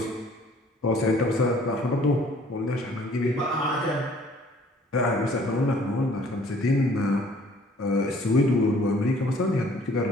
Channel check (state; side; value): normal; both; correlation 0.56